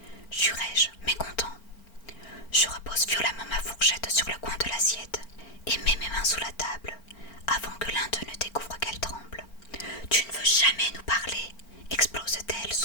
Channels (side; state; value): right; late; 4.4 ms